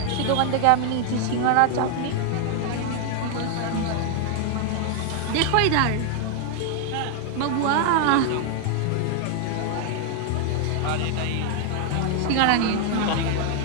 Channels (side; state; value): both; different; correlation 0.00